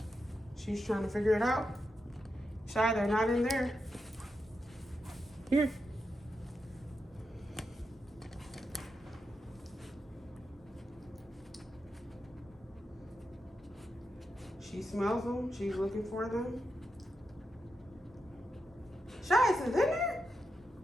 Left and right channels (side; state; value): both; normal; correlation 0.87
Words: She's trying to figure it out. Shy, they're not in there. Here. She smells them. She's looking for them. Shy, is it in there?